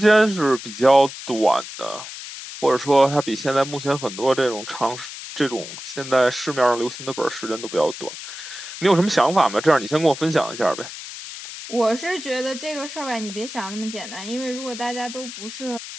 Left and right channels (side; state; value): left; noise; hiss, 11 dB below the sound